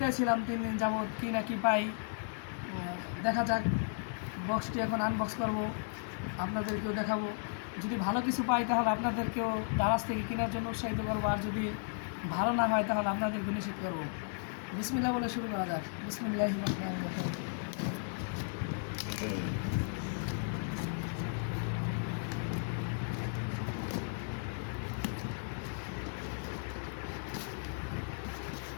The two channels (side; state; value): right; silent; digital silence